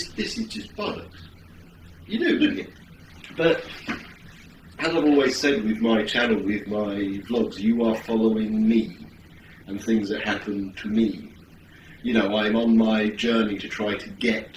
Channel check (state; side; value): identical; both; correlation 1.00